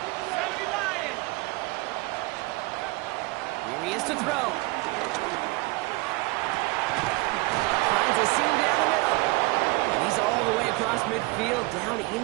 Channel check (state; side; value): quieter; left; 24.3 dB